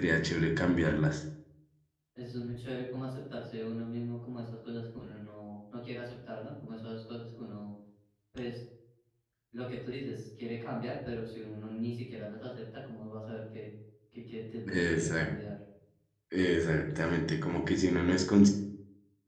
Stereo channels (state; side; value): identical; both; correlation 1.00